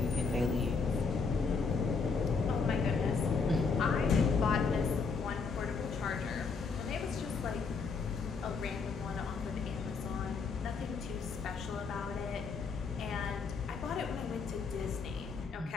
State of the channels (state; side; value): quieter; right; 4.9 dB